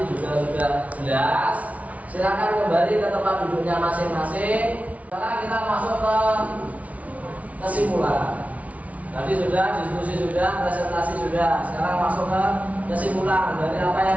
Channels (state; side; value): late; left; 0.068 ms